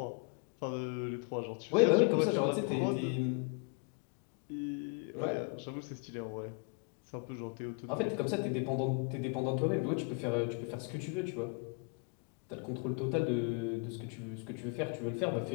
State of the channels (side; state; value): right; quieter; 32.5 dB